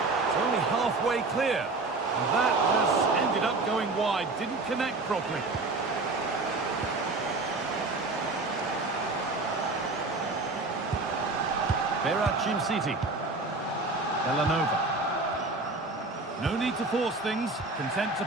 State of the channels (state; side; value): quieter; left; 3.4 dB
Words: only halfway clear. And that has ended up going wide. Didn't connect properly. City. Villanova. No need to force things, content to